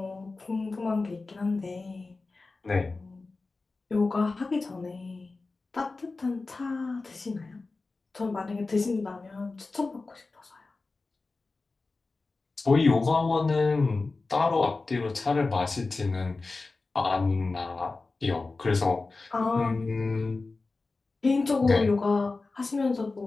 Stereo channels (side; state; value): right; quieter; 3.7 dB